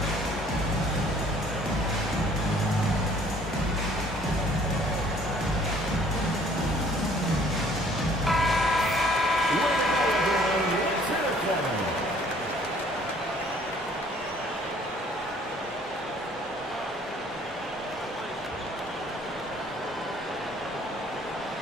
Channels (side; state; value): both; normal; correlation 0.57